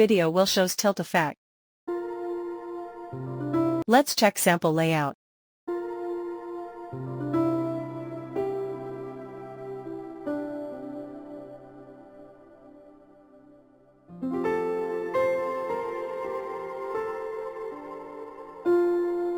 we'll shows tilt effect. Let's check sample layout.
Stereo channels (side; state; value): both; identical; correlation 1.00